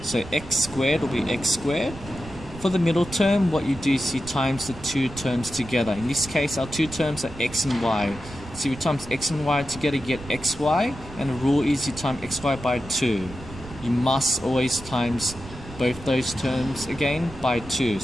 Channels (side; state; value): right; noise; rumble, 14 dB below the sound